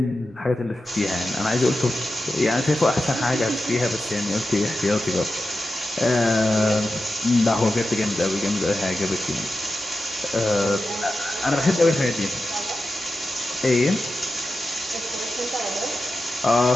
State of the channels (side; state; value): both; normal; correlation 0.91